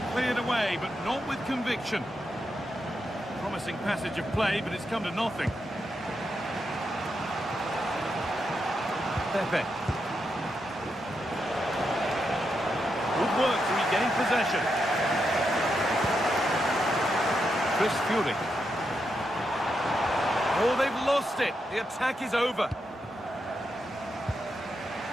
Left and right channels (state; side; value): normal; both; correlation 0.84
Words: Cleared away, but not with conviction. Promising passage of play, but it's come to nothing. Pepe. Good work to regain possession. Chris Fury. Oh, they've lost it. The attack is over.